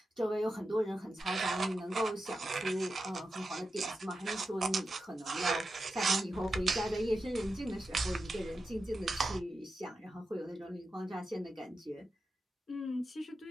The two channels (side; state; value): both; normal; correlation 0.90